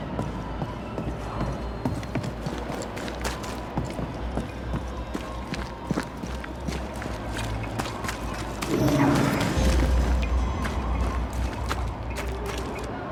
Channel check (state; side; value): identical; both; correlation 1.00